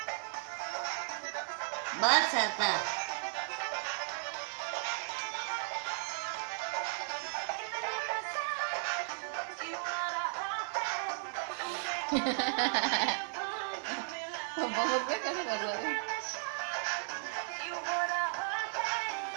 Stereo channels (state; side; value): silent; left; 54 dB below the other